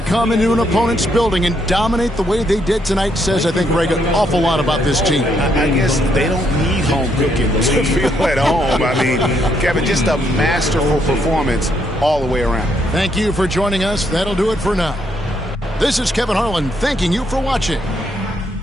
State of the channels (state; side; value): normal; both; correlation 0.74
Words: come into an opponent's building and dominate the way they did tonight says, I think, Greg, an awful lot about this team. I guess they don't need home cooking to feel at home. I mean, Kevin, just a masterful performance all the way around. Thank you for joining us. That'll do it for now. This is Kevin Harlan thanking you for watching.